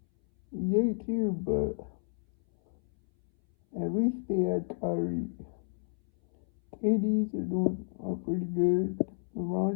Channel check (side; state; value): right; silent; 57 dB below the other